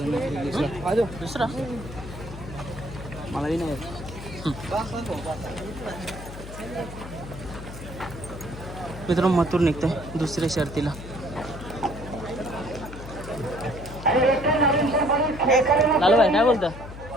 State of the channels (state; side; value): noise; left; hum, 12 dB below the sound